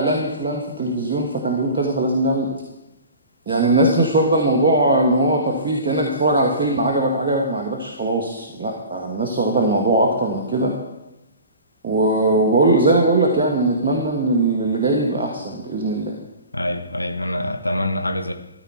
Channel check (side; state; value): both; inverted; correlation -0.39